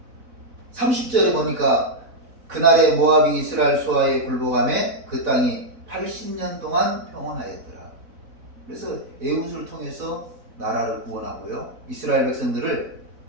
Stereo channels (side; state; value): left; late; 4.1 ms